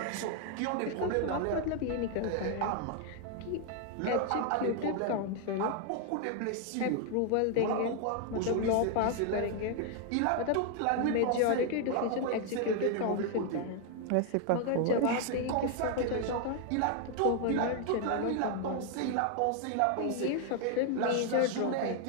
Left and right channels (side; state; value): both; different; correlation 0.00